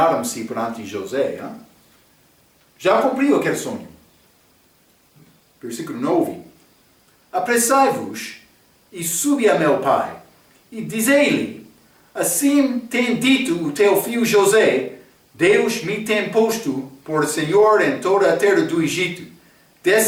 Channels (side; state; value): both; identical; correlation 1.00